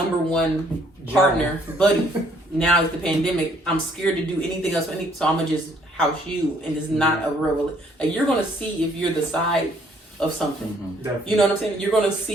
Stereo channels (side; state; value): both; normal; correlation 0.64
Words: one partner, buddy. Now it's the pandemic. I'm scared to do anything else, so I'm gonna just house you, and it's not a real. Like you're gonna see if you're the side of something. You know what I'm saying? You're gonna